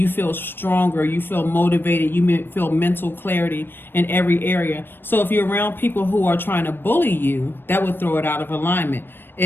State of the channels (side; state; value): right; late; 0.098 ms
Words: feel stronger, you feel motivated, you feel mental clarity in every area. So if you're around people who are trying to bully you, that would throw it out of alignment.